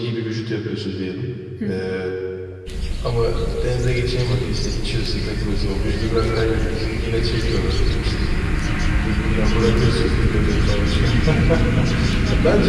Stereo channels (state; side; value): identical; both; correlation 1.00